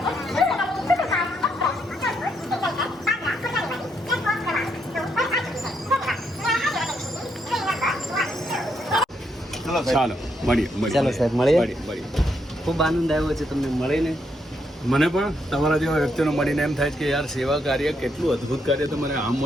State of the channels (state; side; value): normal; both; correlation 0.77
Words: ચાલો મળીએ. ચાલો સાહેબ, મળીએ. મળીએ. ખૂબ આનંદ આવ્યો છે તમને મળીને. મને પણ તમારા જેવા વ્યક્તિનો મળીને એમ થાય કે યાર, સેવા કાર્ય કેટલું અદ્ભુત કાર્ય તો મને આમ